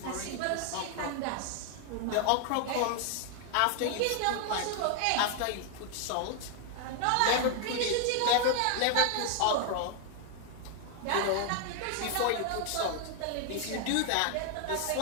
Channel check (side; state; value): both; different; correlation 0.00